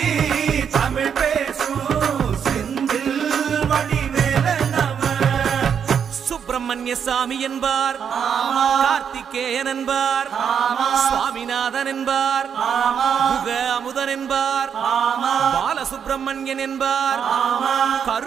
தமிழ் பேசும் செந்தில் வடிவேலனவ சுப்பிரமணிய சாமி என்பார், கார்த்திகேயன் என்பார், சுவாமிநாதன் என்பார், முக அமுதன் என்பார், பாலசுப்பிரமணியன் என்பார்,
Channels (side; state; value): left; quieter; 7.6 dB